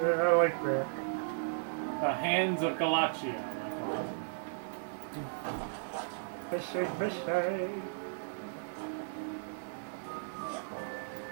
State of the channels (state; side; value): silent; left; digital silence